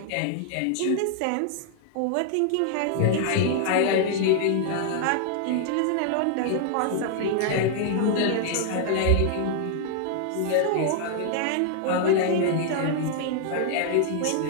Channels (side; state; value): both; different; correlation -0.01